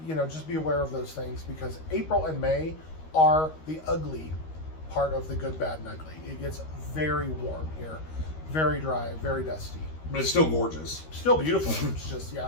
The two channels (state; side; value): late; right; 13 ms